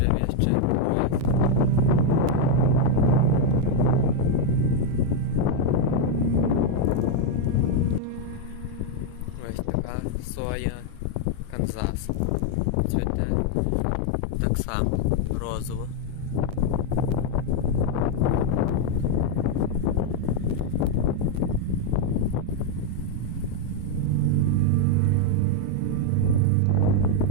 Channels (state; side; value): different; both; correlation 0.01